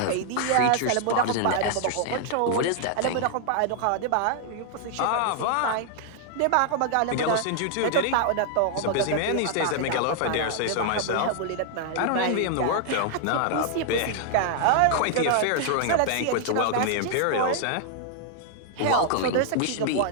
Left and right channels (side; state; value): both; different; correlation 0.00